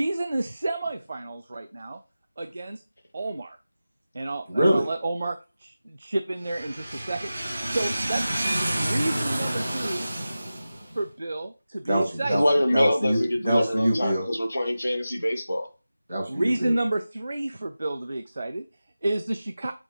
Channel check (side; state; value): both; inverted; correlation -0.95